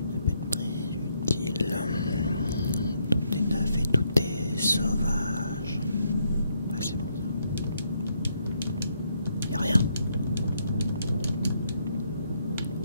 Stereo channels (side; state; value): both; inverted; correlation -0.75